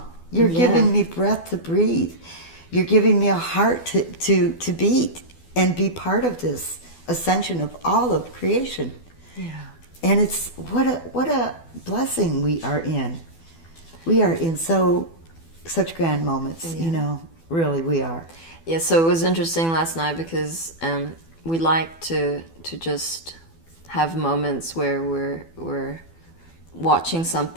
You're giving me breath to breathe. You're giving me a heart to beat and be part of this ascension of all of creation. Yeah. And it's what a blessing we are in. We are in such grand moments, really we are. Yeah, so it was interesting last night because we like to just have moments where we're watching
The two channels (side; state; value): right; late; 12 ms